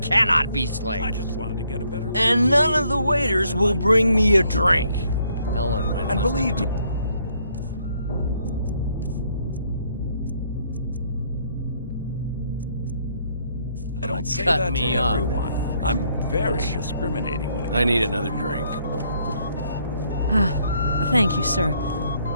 cannot be slaked. I just wanted to get a better... And none of the waiters will bring me a drink. Ellen, and believe me... I don't say cut that me to off. everyone. I'm very discriminating when it comes I need another drink. Thank you, sir.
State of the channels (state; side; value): inverted; both; correlation -0.69